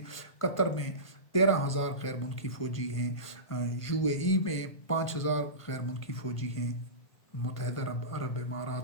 قطر میں 13,000 غیر ملکی فوجی ہیں. UAE میں 5,000 غیر ملکی فوجی ہیں. متحدہ عرب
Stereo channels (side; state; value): right; late; 1.5 ms